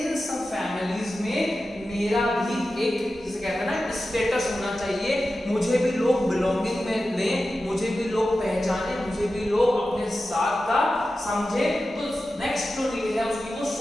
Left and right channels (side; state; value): both; normal; correlation 0.93